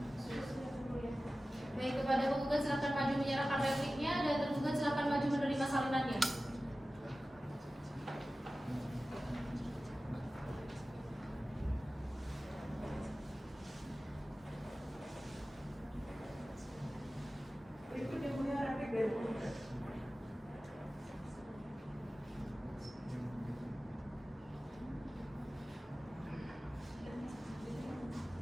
Baik, kepada penggugat silakan maju menyerahkan repliknya dan tergugat silakan maju menerima salinannya. Berikut yang mulia replik dari penggugat.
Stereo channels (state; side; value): normal; both; correlation 0.96